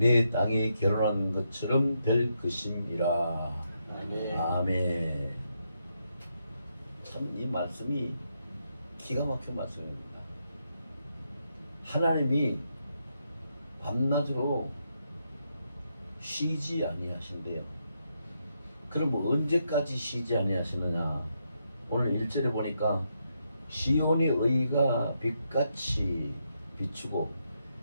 땅이 결혼한 것처럼 될 것임이라. 아멘. 아멘. 참 이 말씀이 기가 막힌 말씀입니다. 하나님이 밤낮으로 쉬지 아니하신대요. 그럼 언제까지 쉬지 아니하시느냐? 오늘 1절에 보니까 시온의 의가 빛같이 비추고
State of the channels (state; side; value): inverted; both; correlation -0.81